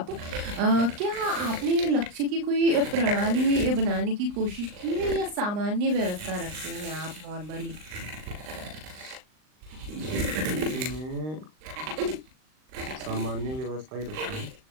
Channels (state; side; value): late; left; 39 ms